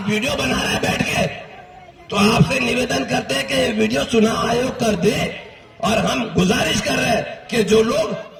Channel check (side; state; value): both; identical; correlation 1.00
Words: वीडियो बना रहे हैं बैठ के, तो आपसे निवेदन करते हैं कि वीडियो चुनाव आयोग कर दे, और हम गुजारिश कर रहे हैं कि जो लोग